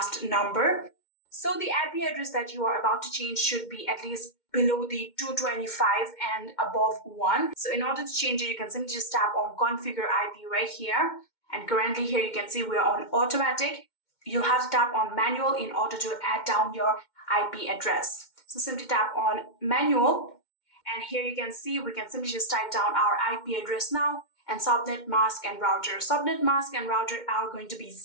number. So the IP address that you are about to change should be at least below the 225 and above 1. So in order to change it, you can simply just tap on configure IP right here. And currently here you can see we're on automatic. You'll have to tap on manual in order to add down your IP address. So simply tap on manual, and here you can see we can simply just type down our IP address now, and subnet mask and router. Subnet mask and router are going to be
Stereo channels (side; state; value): right; late; 2.1 ms